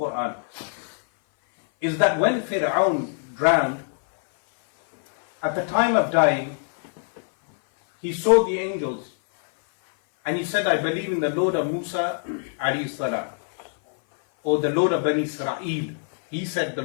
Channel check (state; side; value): silent; right; 57 dB below the other